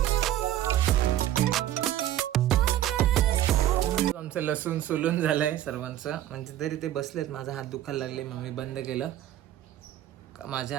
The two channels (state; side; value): quieter; left; 12.6 dB